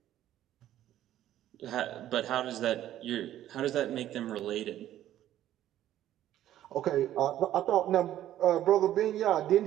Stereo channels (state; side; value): quieter; left; 12.5 dB